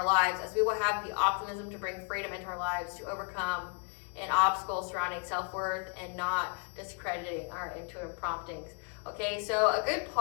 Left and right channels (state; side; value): quieter; right; 39.8 dB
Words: lives, as we will have the optimism to bring freedom into our lives, to overcome an obstacle surrounding self-worth and not discrediting our intuitive promptings. Okay, so a good